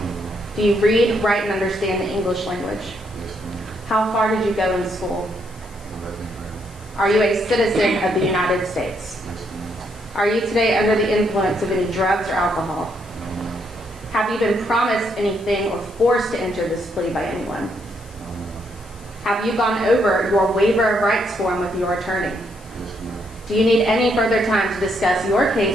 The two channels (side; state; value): left; noise; hiss, 25 dB below the sound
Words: Do you read, write, and understand the English language? Yes, ma'am. How far did you go in school? 11th grade. Are you a citizen of the United States? Yes, ma'am. Are you today under the influence of any drugs or alcohol? No, ma'am. Have you been promised anything or forced to enter this plea by anyone? No, ma'am. Have you gone over your waiver of rights form with your attorney? Yes, ma'am. Do you need any further time to discuss your